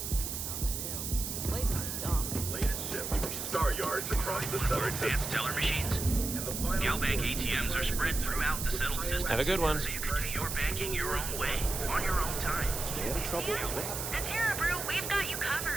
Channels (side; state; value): right; noise; hiss, 4 dB below the sound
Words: Place is dumb. Latest ship. Star yards across the More southern advanced teller machines. Galbank ATMs are spread throughout the settled system. Have a good one. So you can do your banking your own way, on your own time. Stay out of trouble. At Terra Brew, we've got you